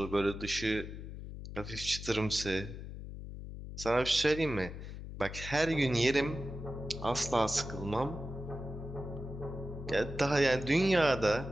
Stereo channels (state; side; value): noise; left; hum, 10 dB below the sound